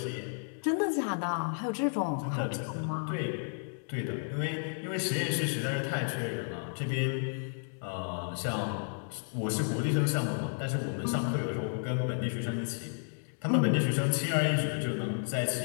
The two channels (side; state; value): right; silent; digital silence